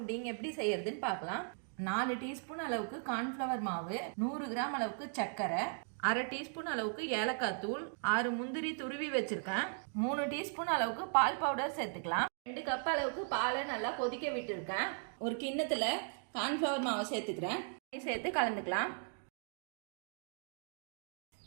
எப்படி செய்யறதுன்னு பார்க்கலாம். 4 டீஸ்பூன் அளவுக்கு கார்ன்ஃப்ளவர் மாவு, 100 கிராம் அளவுக்கு சர்க்கரை, அரை டீஸ்பூன் அளவுக்கு ஏலக்காய் தூள், 6 முந்திரி துருவி வச்சிருக்கேன், 3 டீஸ்பூன் அளவுக்கு பால் பவுடர் சேர்த்துக்கலாம். 2 கப் அளவுக்கு பாலை நல்லா கொதிக்க விட்டுருக்கேன். ஒரு கிண்ணத்துல கார்ன்ஃப்ளவர் மாவை சேர்த்துக்கிறேன். சேர்த்து கலந்துக்கலாம்.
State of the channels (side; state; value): left; silent; 53 dB below the other